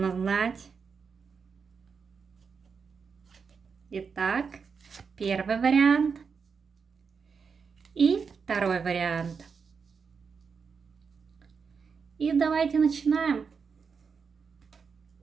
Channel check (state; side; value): quieter; left; 5.7 dB